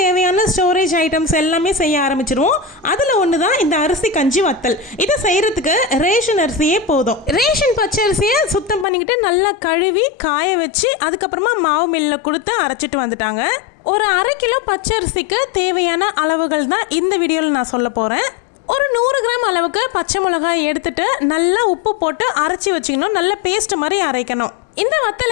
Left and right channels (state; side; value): drops out; right; at 8.8 s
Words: ஸ்டோரேஜ் ஐட்டம்ஸ் எல்லாமே செய்ய ஆரம்பிச்சிருவோம். அதில் ஒன்று தான் இந்த அரிசி கஞ்சி வத்தல். இதை செய்கிறதுக்கு ரேஷன் அரிசியே போதும். ரேஷன் பச்சை அரிசியை சுத்தம் பண்ணிக்கிட்டு நல்லா கழுவி காய வச்சு அதுக்கப்புறமா மாவு மில்லில் கொடுத்து அரைச்சிட்டு வந்துட்டாங்க. ஒரு 1/2 கிலோ பச்சை அரிசிக்கு தேவையான அளவுகள் தான் இந்த வீடியோவில் நான் சொல்ல போகிறேன். ஒரு 100 கிராம் அளவுக்கு பச்சை மிளகாய் எடுத்துட்டு நல்லா உப்பு போட்டு அரைச்சி வச்சுக்கணும். நல்ல பேஸ்ட் மாதிரி அரைக்கணும். இந்த